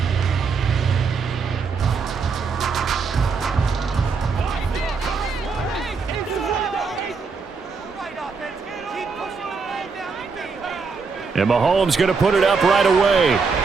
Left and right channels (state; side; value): quieter; left; 5.0 dB